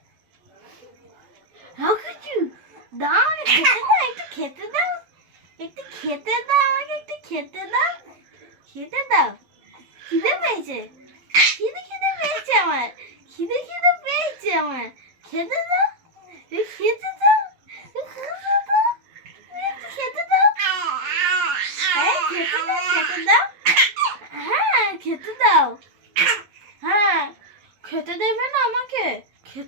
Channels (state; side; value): late; left; 12 ms